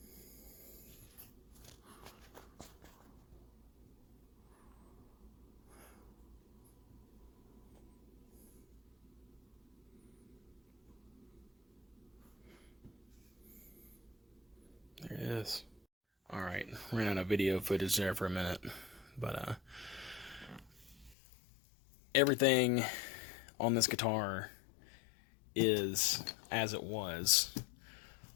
ran out of video footage there for a minute. But everything on this guitar is as it was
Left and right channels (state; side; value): drops out; right; at 21.2 s